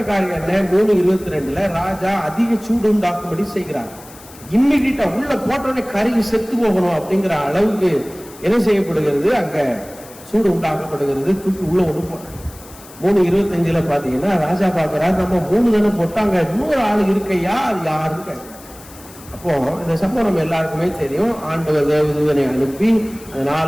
காரியம் என்ன? 3:22 ராஜா அதிக சூடு உண்டாக்கும்படி செய்கிறார். இம்மிடியா உள்ள போட்டோடனே கருகி செத்து போகணும் அப்படிங்கிற அளவுக்கு என்ன செய்யப்படுகிறது? அங்க சூடு உண்டாக்கப்படுகிறது. தூக்கி உள்ள ஒண்ணு போட்டாங்க. 3:25 பாத்தீங்கன்னா, ராஜா பாக்குறாரு, நம்ம 3 தானே போட்டாங்க, இன்னொரு ஆளு இருக்கையா, அது யாருன்னு கேட்க. அப்போ இந்த சம்பவம் நம்ம எல்லாருக்குமே தெரியும். ஆண்டவர் தேவதூதனை அனுப்பி அந்த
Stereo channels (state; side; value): noise; left; hiss, 20 dB below the sound